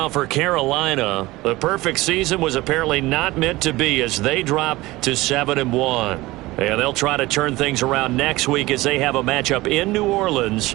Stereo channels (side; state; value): left; quieter; 19.6 dB